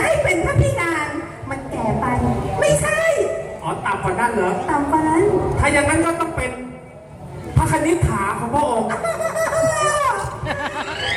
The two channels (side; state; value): both; identical; correlation 1.00